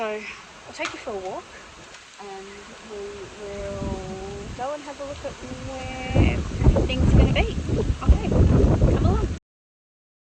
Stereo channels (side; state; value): both; identical; correlation 1.00